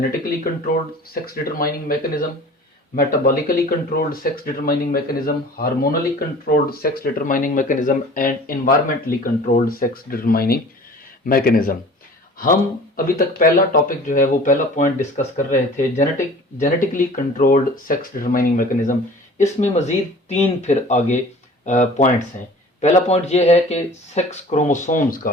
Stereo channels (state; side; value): normal; both; correlation 0.45